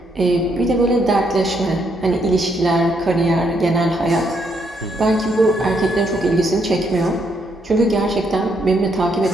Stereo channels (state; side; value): normal; both; correlation 0.74